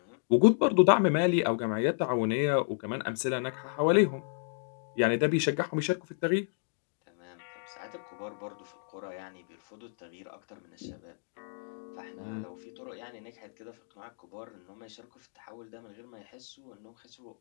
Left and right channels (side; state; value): right; silent; digital silence